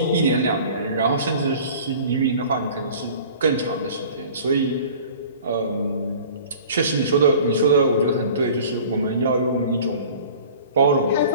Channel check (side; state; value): both; inverted; correlation -0.45